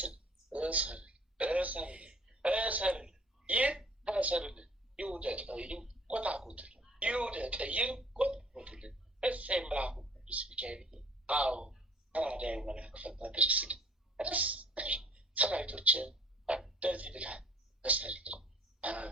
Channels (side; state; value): both; normal; correlation 0.53